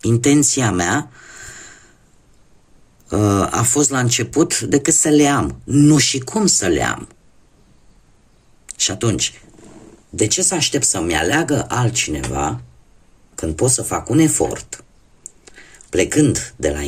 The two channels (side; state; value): both; identical; correlation 1.00